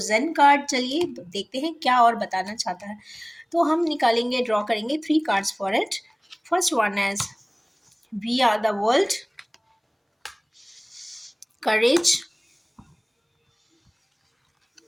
कार्ड, चलिए देखते हैं क्या और बताना चाहता है। तो हम निकालेंगे, ड्रॉ करेंगे 3 cards for it. First one as we are the world, courage,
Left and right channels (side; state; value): both; identical; correlation 1.00